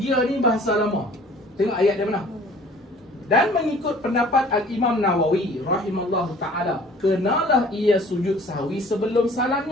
ni bahasa lama. Tengok ayat dia mana? Dan mengikut pendapat Al-Imam Nawawi rahimallahu ta'ala, kenalah ia sujud sahwi sebelum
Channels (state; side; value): normal; both; correlation 0.51